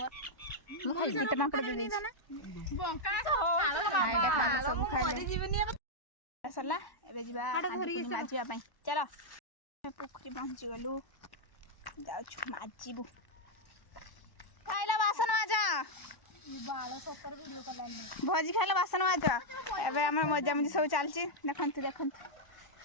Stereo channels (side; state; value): right; late; 1.1 ms